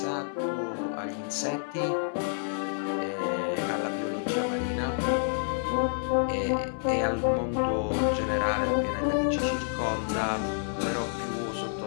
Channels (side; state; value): right; silent; 59 dB below the other